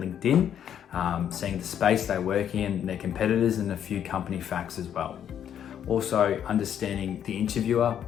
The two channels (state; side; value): quieter; right; 9.4 dB